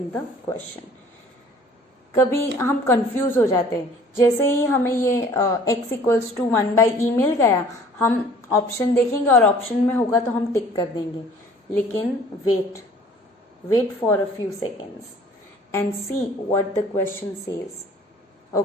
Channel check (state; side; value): normal; both; correlation 0.52